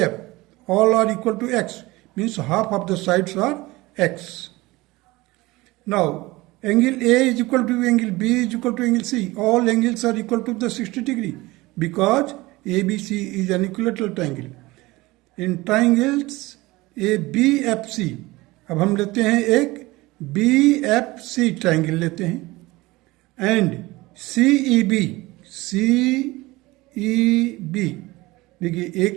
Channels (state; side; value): quieter; left; 20.7 dB